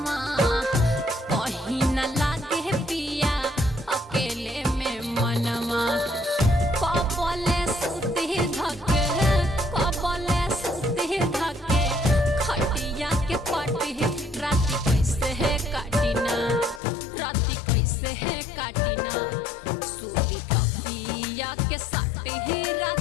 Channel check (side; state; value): right; drops out; at 16.8 s